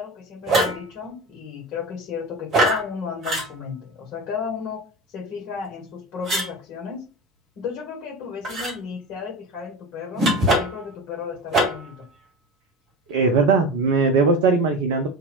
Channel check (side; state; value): both; normal; correlation 0.27